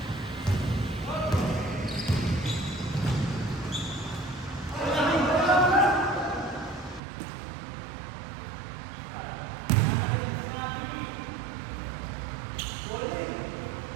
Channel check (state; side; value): drops out; left; at 7.0 s